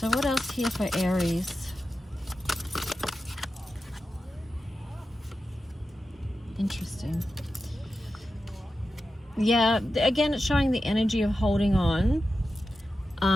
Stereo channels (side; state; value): both; normal; correlation 0.92